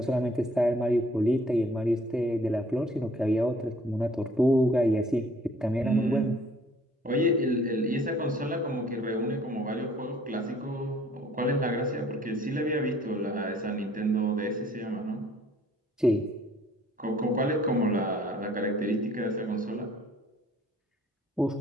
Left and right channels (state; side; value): normal; both; correlation 0.57